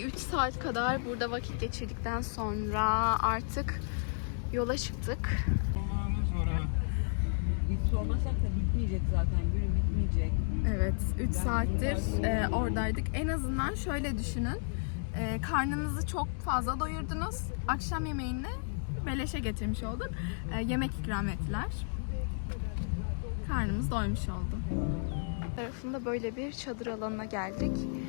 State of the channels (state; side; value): silent; right; digital silence